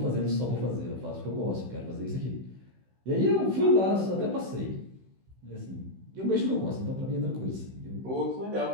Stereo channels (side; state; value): left; late; 16 ms